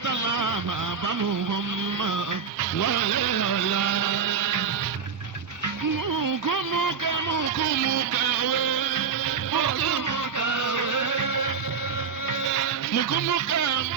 la máa bá mu wọn mọ́ wọlé ọ̀la. Mùkúmùkẹ́ mùkúmùkẹ́ wé. Mùkúmùkẹ́ wé. Mùkúmùkẹ́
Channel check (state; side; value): quieter; left; 6.2 dB